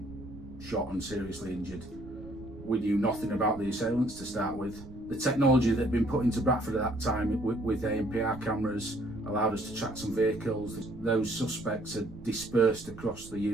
shot and seriously injured. We knew nothing about the assailants to start with. The technology that had been put into Bradford at that time with ANPR cameras allowed us to track some vehicles. Those suspects had dispersed across the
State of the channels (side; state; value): right; noise; rumble, 16 dB below the sound